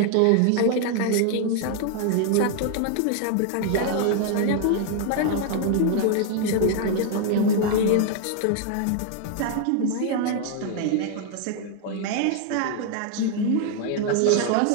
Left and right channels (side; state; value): both; different; correlation 0.00